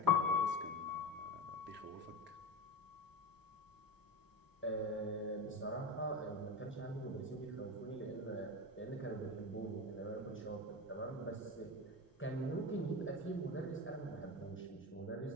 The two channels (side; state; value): both; normal; correlation 0.24